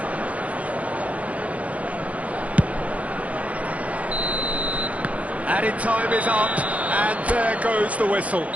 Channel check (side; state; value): left; late; 0.066 ms